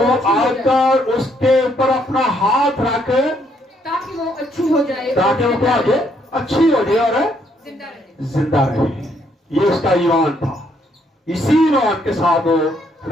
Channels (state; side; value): normal; both; correlation 0.71